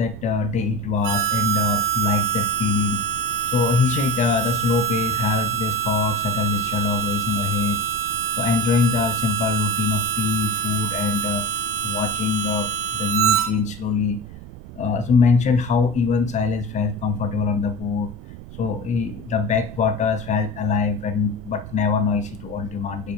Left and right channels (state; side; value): noise; right; rumble, 15 dB below the sound